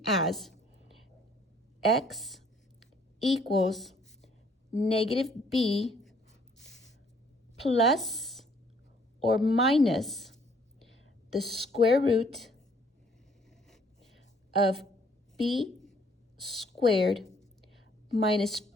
as x equals negative b plus or minus the square root of b squared minus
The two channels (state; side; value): normal; both; correlation 0.62